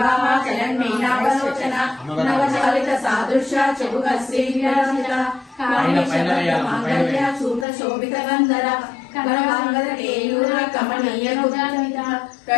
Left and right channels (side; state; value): right; drops out; at 7.7 s